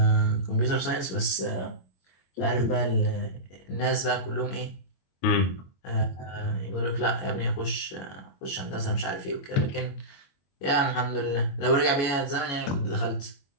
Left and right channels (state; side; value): late; right; 21 ms